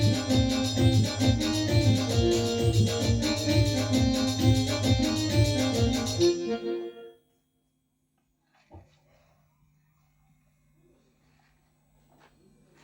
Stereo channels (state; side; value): identical; both; correlation 1.00